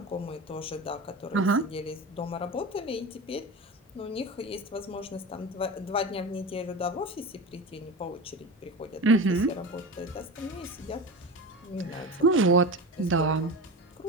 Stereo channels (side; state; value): both; normal; correlation 0.27